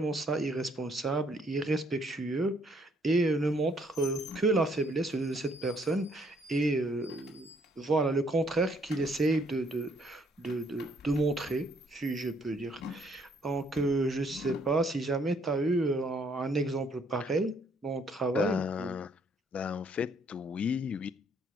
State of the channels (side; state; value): both; normal; correlation 0.67